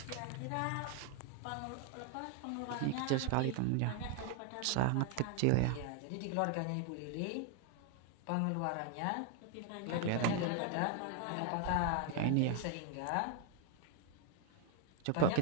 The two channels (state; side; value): different; both; correlation 0.00